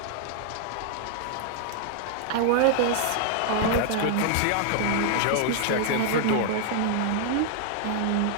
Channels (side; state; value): both; different; correlation 0.00